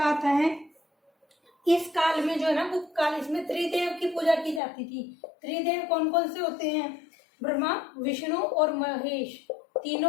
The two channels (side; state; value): right; drops out; at 4.6 s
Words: आता है इस काल में जो है ना, गुप्त काल, इसमें त्रिदेव की पूजा की जाती थी। त्रिदेव कौन कौन से होते हैं? ब्रह्मा, विष्णु और महेश,